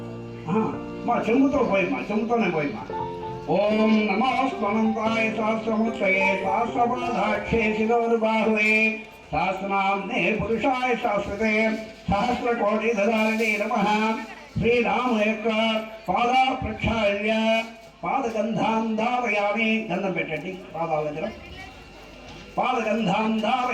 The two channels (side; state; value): both; identical; correlation 1.00